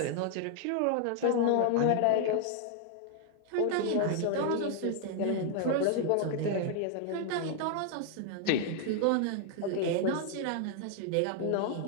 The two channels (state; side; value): different; both; correlation 0.00